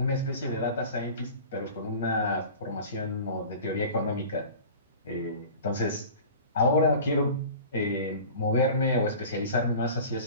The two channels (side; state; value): both; inverted; correlation -0.40